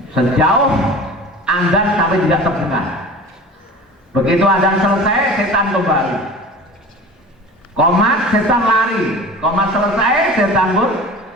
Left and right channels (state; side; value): normal; both; correlation 0.38